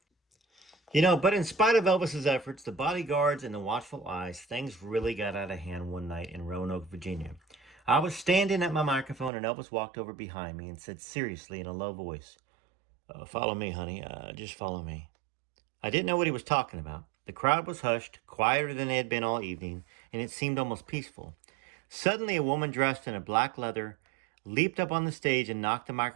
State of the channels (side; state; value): left; drops out; at 9.3 s